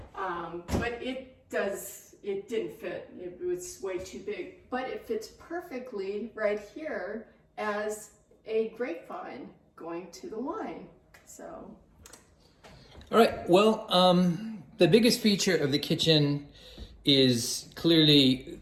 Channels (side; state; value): both; identical; correlation 1.00